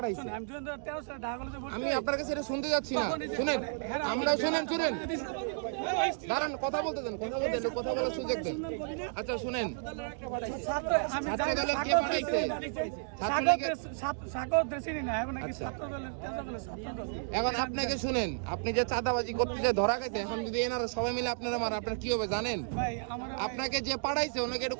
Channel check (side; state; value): left; silent; digital silence